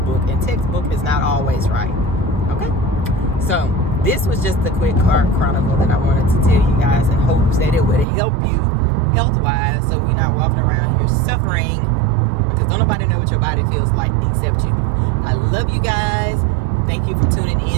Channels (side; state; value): left; drops out; at 8.1 s